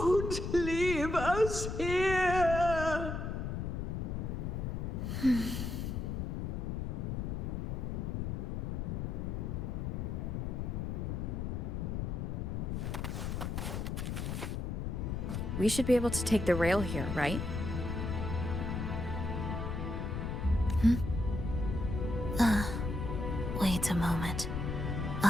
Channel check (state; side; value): noise; left; rumble, 2 dB below the sound